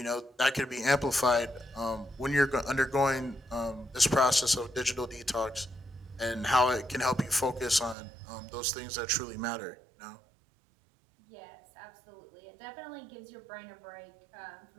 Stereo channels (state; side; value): drops out; left; at 8.0 s